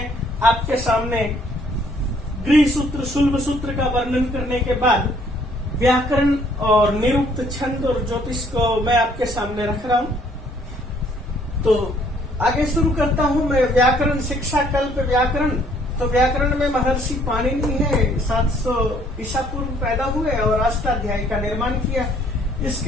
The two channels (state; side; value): normal; both; correlation 0.63